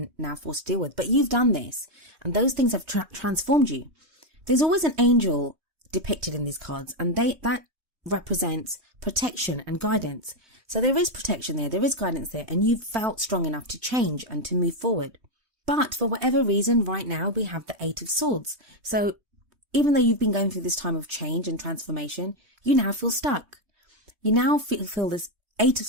now forced to deal with. But you've done this, and those things have transformed you. There's always an angel depicted in these cards, and that represents protection and guidance. So there is protection there is guidance there, and you've felt strong enough to change and to move forward. But for whatever reason, right now we have the Eight of Swords. So even though you've been going through this time of change and transformation, you now feel stuck. You now feel this Eight of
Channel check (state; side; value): late; left; 3.2 ms